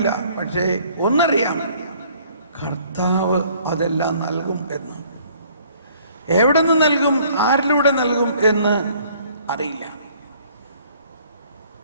പക്ഷേ ഒന്നറിയാം, കർത്താവ് അതെല്ലാം നൽകും എന്ന്. എവിടെ നിന്ന് നൽകും, ആരിലൂടെ നൽകും എന്ന് അറിയില്ല.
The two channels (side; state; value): both; inverted; correlation -0.59